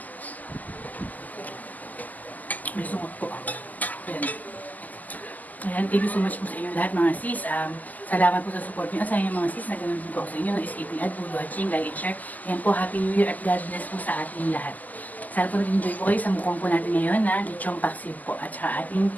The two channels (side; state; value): right; late; 0.081 ms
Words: May sungot po. Ayan. Ayan, thank you so much po sa inyo lahat mga sis. Salamat po sa support niyo. Sa inyo mga sis, na ganun din po ako sa inyo. No escaping ad, food watching, like and share. Ayan po, Happy New Year at God bless po sa ating lahat. Sana po nag-enjoy po kayo sa mukhang po natin ngayon na lechong paksiw po at saka ating